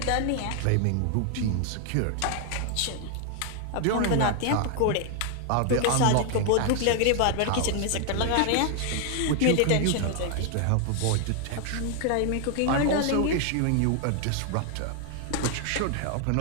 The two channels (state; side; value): different; both; correlation 0.00